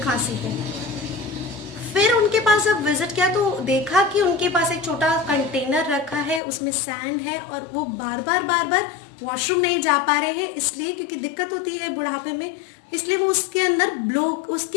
खांसी है। फिर उनके पास जब विजिट किया तो देखा कि उनके पास एक छोटा कंटेनर रखा है, उसमें सैंड है और वो बार बार वॉशरूम नहीं जा पा रहे हैं, इसलिए क्योंकि दिक्कत होती है बुढ़ापे में, इसलिए वो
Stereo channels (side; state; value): right; drops out; at 6.4 s